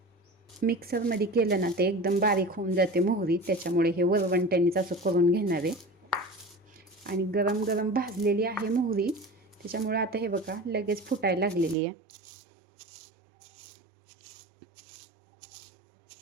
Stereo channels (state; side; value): drops out; left; at 11.8 s